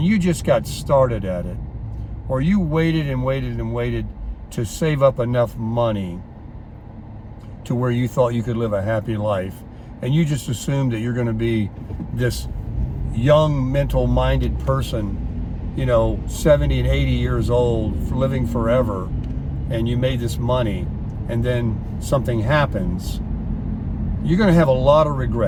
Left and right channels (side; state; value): both; identical; correlation 1.00